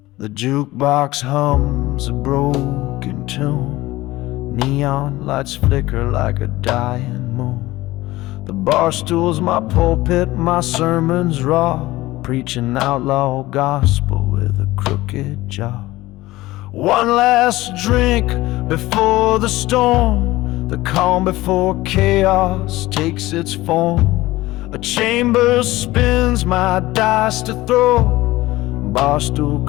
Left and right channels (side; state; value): right; quieter; 18.2 dB